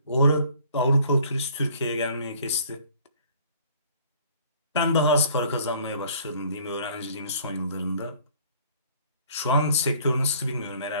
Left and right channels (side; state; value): both; inverted; correlation -0.56